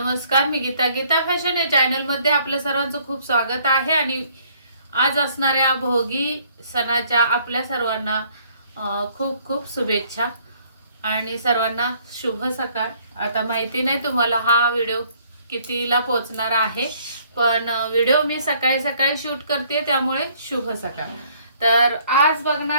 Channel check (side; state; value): both; inverted; correlation -0.63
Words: मी गीता. गीता फॅशन या चॅनल मध्ये आपल्या सर्वांचं खूप स्वागत आहे. आणि आज असणाऱ्या भोगी सणाच्या आपल्या सर्वांना खूप खूप शुभेच्छा आणि सर्वांना शुभ सकाळ. आता माहिती नाही तुम्हाला हा व्हिडिओ कितीला पोहोचणार आहे, पण व्हिडिओ मी सकाळी सकाळी शूट करते, त्यामुळे शुभ सकाळ. तर आज